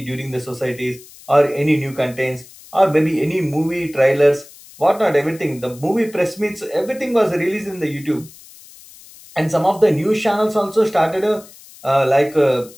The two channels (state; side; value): noise; left; hiss, 21 dB below the sound